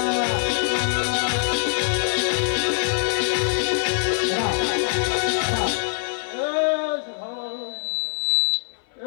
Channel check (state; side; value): silent; right; 58 dB below the other